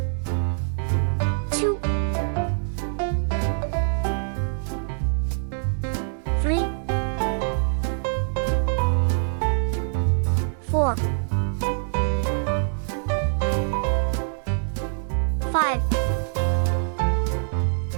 2 3 4 5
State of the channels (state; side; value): silent; left; digital silence